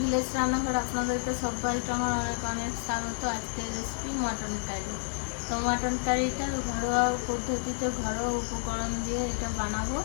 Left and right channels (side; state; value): right; silent; 58 dB below the other